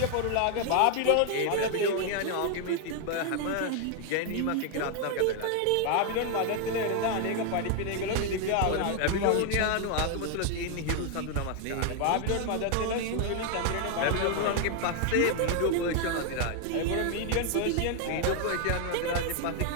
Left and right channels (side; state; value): both; different; correlation 0.00